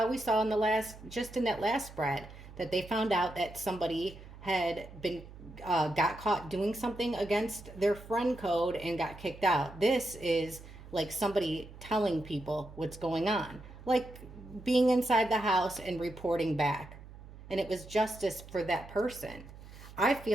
we saw in the last, just in that last spread, that they found out that somebody had been got caught doing something against their friend code and got kicked out. This is like somebody telling people what's going on, like being inside the house and reporting back, and it was justice for that person. I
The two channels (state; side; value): noise; right; hum, 17 dB below the sound